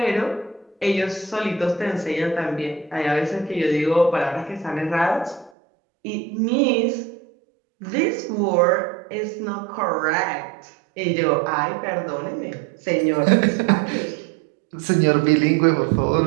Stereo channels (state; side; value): drops out; left; at 5.5 s